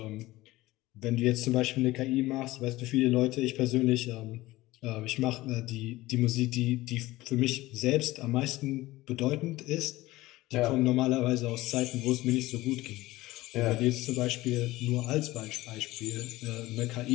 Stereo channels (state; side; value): quieter; right; 18.2 dB